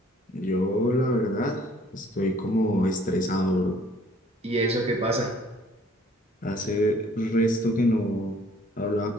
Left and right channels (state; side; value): normal; both; correlation 0.58